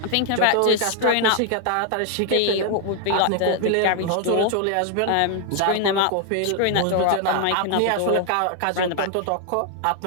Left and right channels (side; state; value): both; different; correlation 0.00